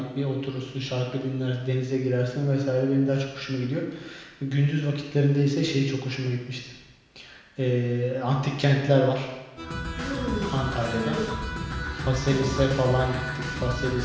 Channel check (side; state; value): both; identical; correlation 1.00